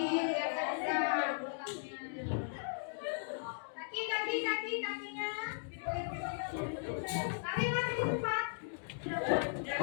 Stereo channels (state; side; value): silent; right; digital silence